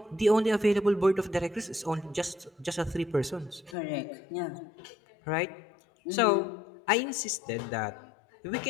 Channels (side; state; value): right; drops out; at 3.8 s